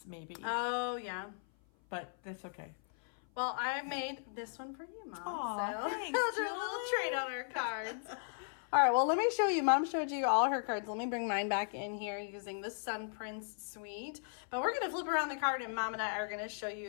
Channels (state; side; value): silent; right; 53 dB below the other